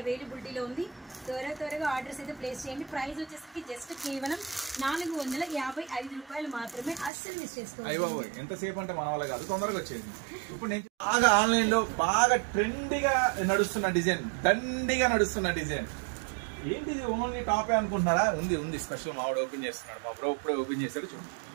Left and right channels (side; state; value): left; drops out; at 7.1 s